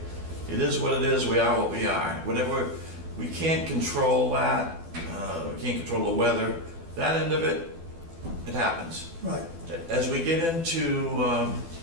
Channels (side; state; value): left; late; 12 ms